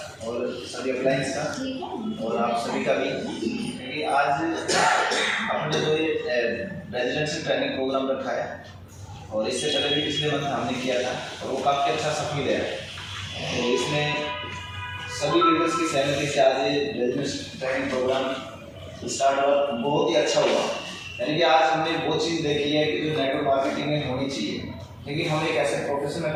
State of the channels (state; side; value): identical; both; correlation 1.00